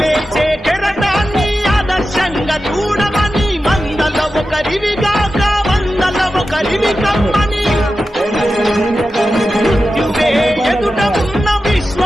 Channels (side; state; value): both; normal; correlation 0.92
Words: కెరటాన్ని ఆదర్శంగా చూడమని మందల ఒకరివిగాక వందల ఒకరివి కమ్మని మృత్యువే ఎదుట ఉన్న